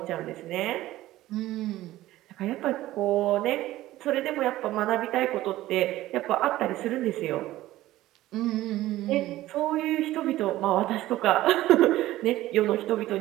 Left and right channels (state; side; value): quieter; left; 15.8 dB